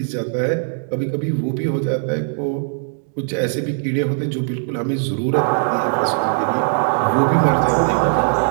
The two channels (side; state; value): left; silent; 66 dB below the other